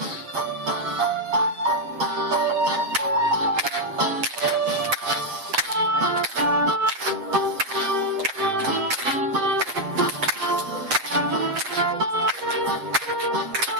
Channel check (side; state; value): left; late; 7.6 ms